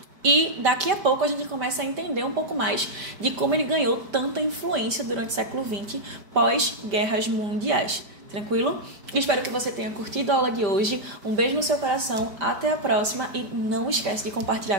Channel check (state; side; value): late; left; 5.0 ms